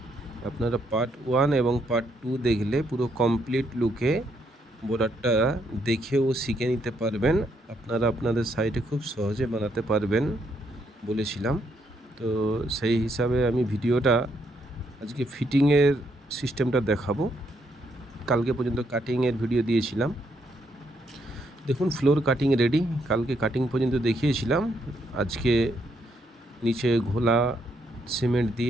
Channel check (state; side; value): normal; both; correlation 0.75